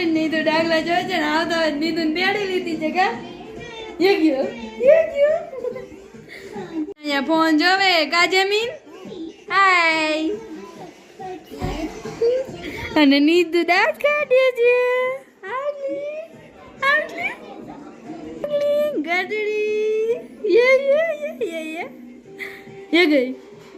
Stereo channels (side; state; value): both; identical; correlation 1.00